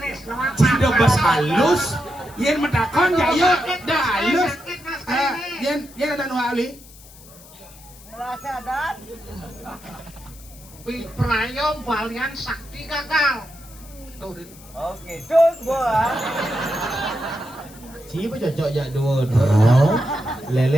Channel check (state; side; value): noise; left; hiss, 21 dB below the sound